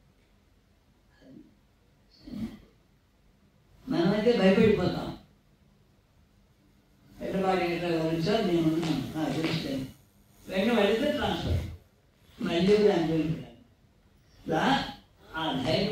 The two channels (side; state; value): both; identical; correlation 1.00